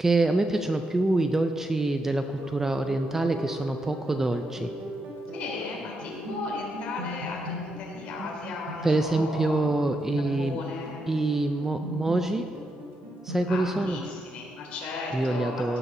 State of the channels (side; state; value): both; normal; correlation 0.83